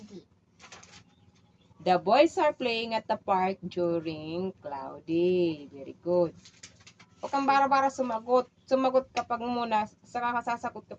The boys are playing at the park during cloudy. Very good. Huwag kang bara-bara sumagot. Sumagot kapag muna, saka ka sasagot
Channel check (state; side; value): identical; both; correlation 1.00